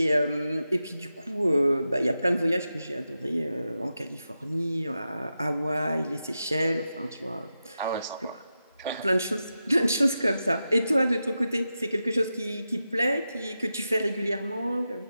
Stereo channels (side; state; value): both; inverted; correlation -0.90